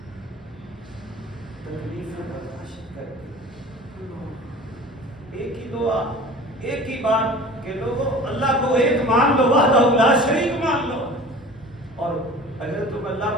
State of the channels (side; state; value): both; normal; correlation 0.41